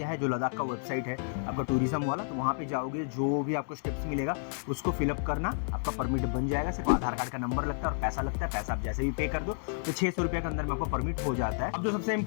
है, जो लद्दाख का वेबसाइट है आपका टूरिज्म वाला, तो वहाँ पे जाओगे, जो भी आपको स्टेप्स मिलेगा उसको फिलअप करना, आपका परमिट बन जाएगा। सिर्फ आधार कार्ड का नंबर लगता है और पैसा लगता है। पैसा आप जैसे भी पे कर दो तो 600 रुपये के अंदर में आपको परमिट हो जाता है। अब जो सबसे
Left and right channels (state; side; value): silent; right; digital silence